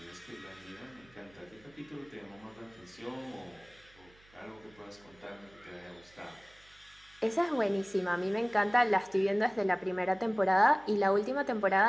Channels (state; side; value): noise; right; hum, 28 dB below the sound